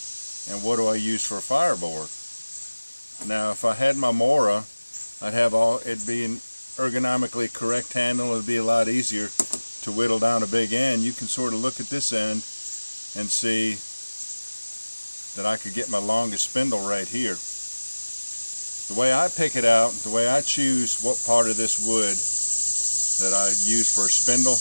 And what do I use for a fireboard? Now, if I had my Mora, I'd have it'd be an ergonomically correct handle. It'd be a lot easier to whittle down a big end. You can sort of look at this end and see that I could get my longest spindle right here. The way I pick it out, the way I choose what part of this wood that I use for a spindle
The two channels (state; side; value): inverted; both; correlation -1.00